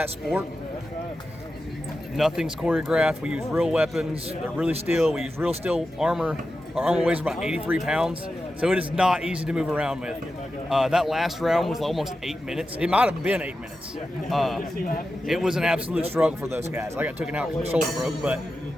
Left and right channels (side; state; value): both; normal; correlation 0.91